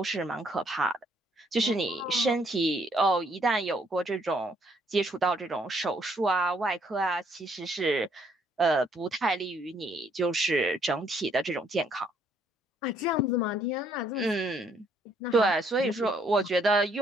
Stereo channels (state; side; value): normal; both; correlation 0.67